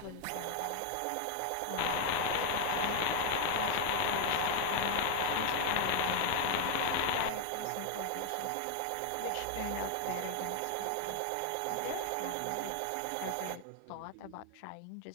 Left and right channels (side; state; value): both; different; correlation 0.00